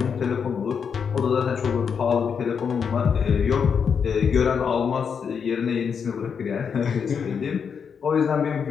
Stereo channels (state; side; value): quieter; right; 6.6 dB